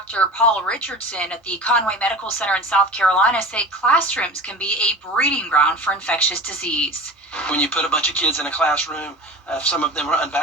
Paul Richardson at the Conway Medical Center in South Carolina say classrooms can be a breeding ground for infectious disease. When you put a bunch of kids in a classroom, if some of them are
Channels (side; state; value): both; normal; correlation 0.36